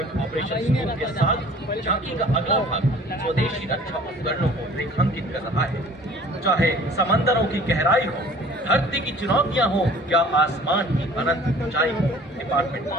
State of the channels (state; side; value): normal; both; correlation 0.49